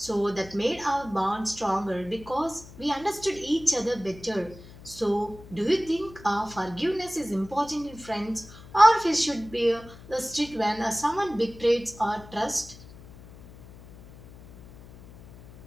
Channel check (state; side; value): noise; left; hum, 19 dB below the sound